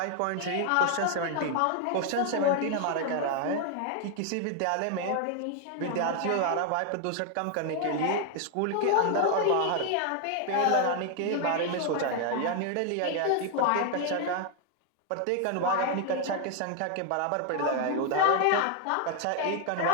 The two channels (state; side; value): different; both; correlation 0.00